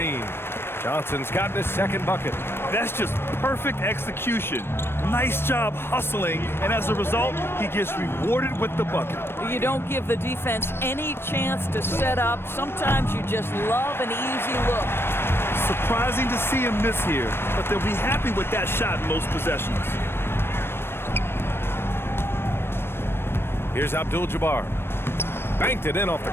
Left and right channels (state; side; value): late; right; 0.11 ms